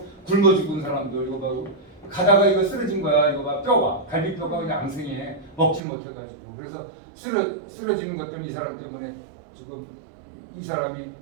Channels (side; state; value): left; drops out; at 5.8 s